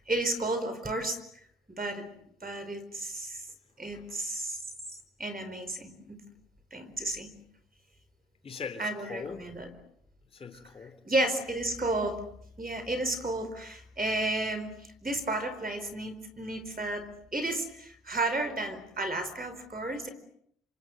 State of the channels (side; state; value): both; normal; correlation 0.53